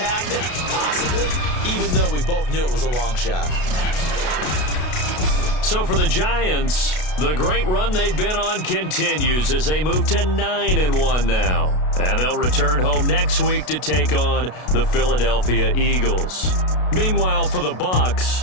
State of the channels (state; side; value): late; right; 33 ms